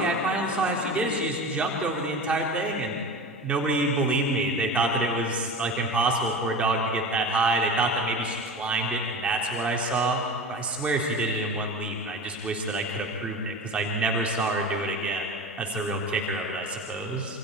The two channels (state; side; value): normal; both; correlation 0.31